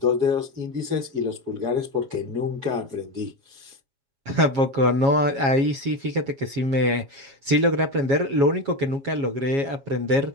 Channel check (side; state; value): left; late; 7.3 ms